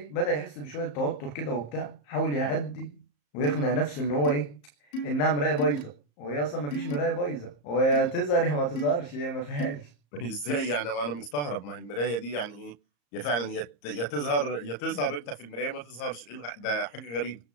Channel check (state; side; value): late; right; 34 ms